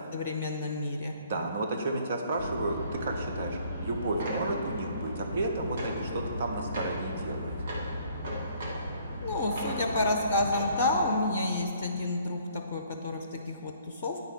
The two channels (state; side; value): inverted; both; correlation -0.61